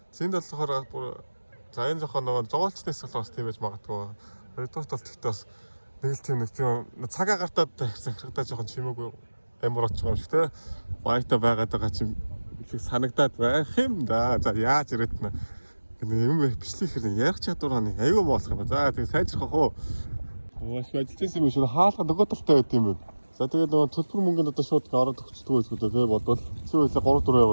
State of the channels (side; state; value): both; inverted; correlation -1.00